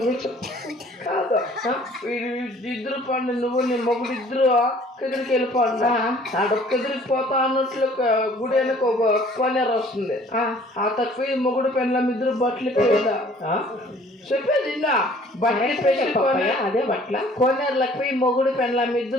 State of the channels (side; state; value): both; normal; correlation 0.54